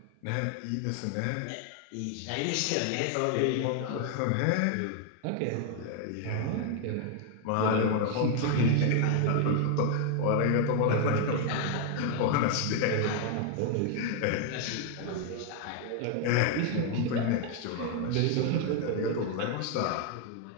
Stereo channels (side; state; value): both; different; correlation 0.00